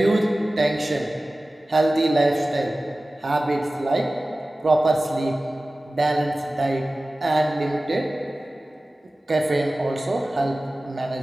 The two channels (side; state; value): both; normal; correlation 0.97